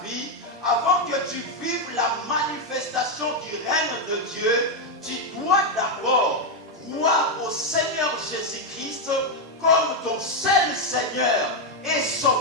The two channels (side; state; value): both; normal; correlation 0.03